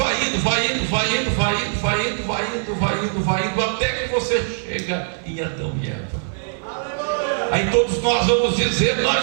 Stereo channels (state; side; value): silent; left; digital silence